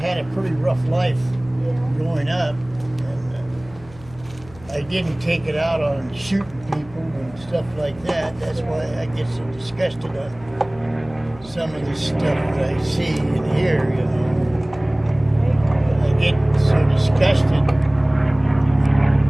a pretty rough life growing up, and I didn't take it out on shooting people and stuff like that. That's why I get so disgusted on some of the stuff that I see and hear, you know. I get so disgusted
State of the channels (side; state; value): left; noise; hum, 21 dB below the sound